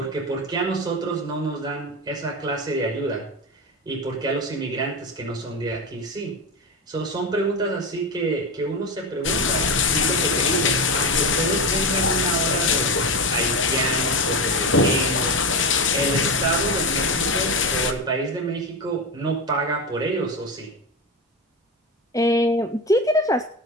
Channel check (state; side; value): normal; both; correlation 0.18